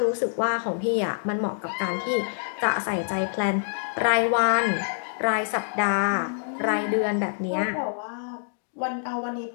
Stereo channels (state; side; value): silent; right; digital silence